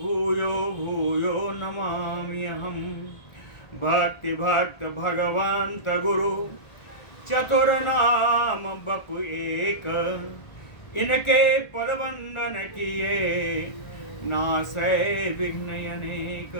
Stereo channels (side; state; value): right; late; 1.4 ms